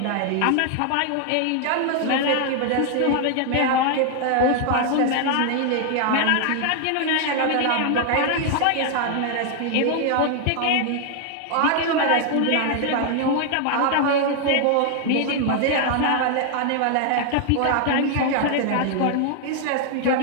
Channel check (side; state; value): both; different; correlation 0.00